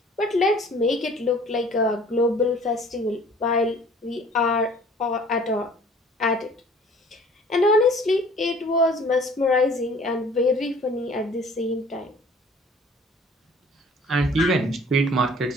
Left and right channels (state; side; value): normal; both; correlation 0.51